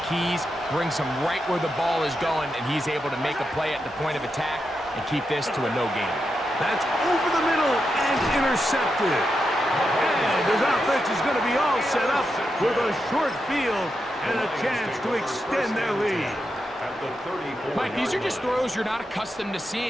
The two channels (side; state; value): both; normal; correlation 0.86